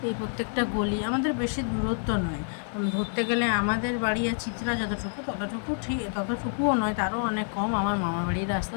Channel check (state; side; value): silent; right; 59 dB below the other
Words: এই প্রত্যেকটা গলি আমাদের বেশি দূরত্ব নয়, ধরতে গেলে আমাদের বাড়ি আর চিত্রা ততটুকুও নয়, তারও অনেক কম। আমার মামা বাড়ির রাস্তা